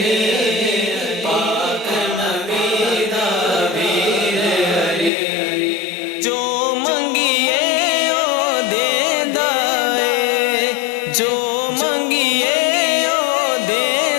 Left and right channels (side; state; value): right; drops out; at 5.1 s